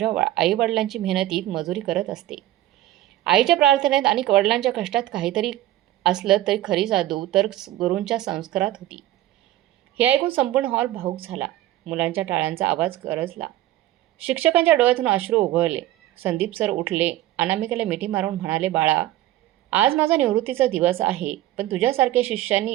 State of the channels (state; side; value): quieter; left; 14.5 dB